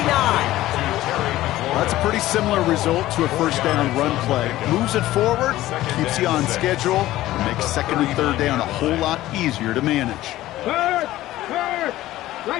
That's a pretty similar result to a first down run play. Moves it forward, keeps you on schedule, and makes second and third down a whole lot easier to manage. Third.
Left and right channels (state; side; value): quieter; right; 15.5 dB